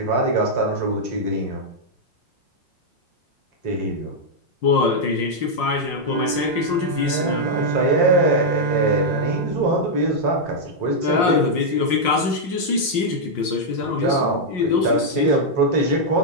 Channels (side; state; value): right; late; 5.6 ms